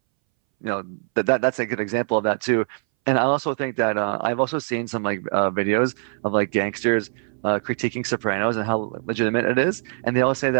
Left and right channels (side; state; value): left; silent; 62 dB below the other